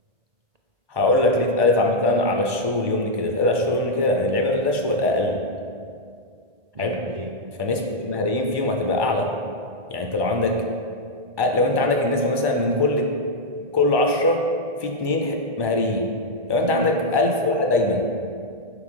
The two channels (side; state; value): left; late; 1.2 ms